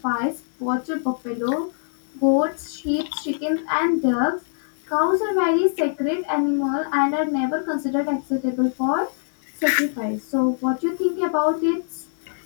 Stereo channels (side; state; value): right; silent; digital silence